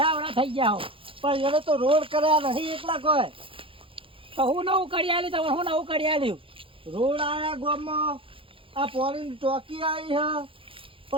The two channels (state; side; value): late; left; 0.26 ms